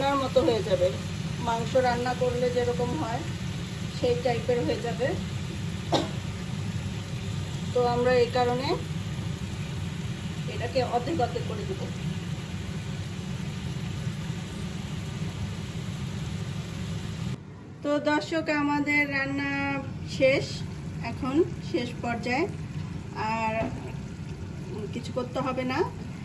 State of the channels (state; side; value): identical; both; correlation 1.00